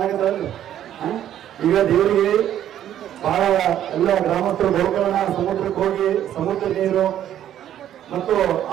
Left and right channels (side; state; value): left; quieter; 11.1 dB